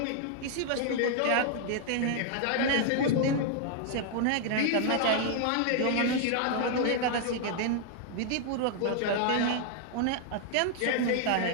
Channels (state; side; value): different; both; correlation 0.00